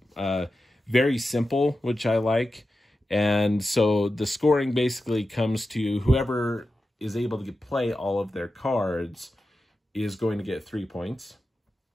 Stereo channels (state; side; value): normal; both; correlation 0.92